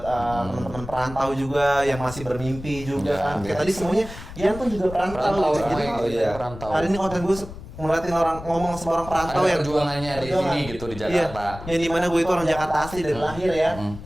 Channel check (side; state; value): left; noise; rumble, 13 dB below the sound